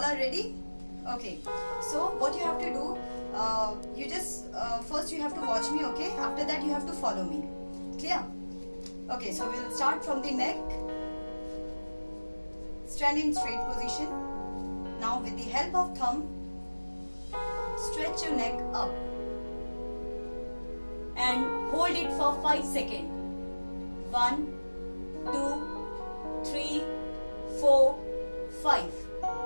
are ready. Okay. So what you have to do, you just first you have to watch me. Okay. After that you have to follow me. Clear? Okay. So we'll start from the neck. Stand in straight position. Now with the help of thumb, stretch your neck up and hold it for 5 seconds. 1, 2, 3, 4, 5.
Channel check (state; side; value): inverted; both; correlation -1.00